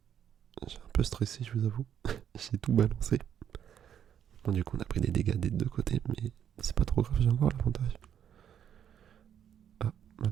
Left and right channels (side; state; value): left; quieter; 9.2 dB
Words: j'ai un peu stressé, je vous avoue. J'ai tout balancé. Bon, du coup, on a pris des dégâts des deux côtés, mais c'est pas trop grave, j'ai encore l'avantage. Ah,